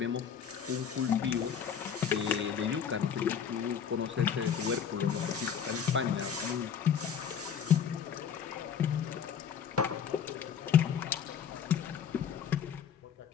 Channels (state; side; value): quieter; right; 7.8 dB